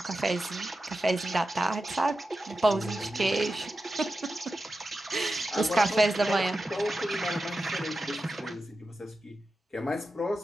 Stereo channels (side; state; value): both; normal; correlation 0.91